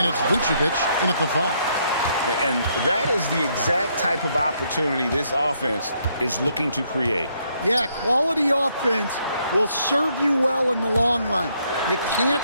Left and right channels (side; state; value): both; inverted; correlation -0.73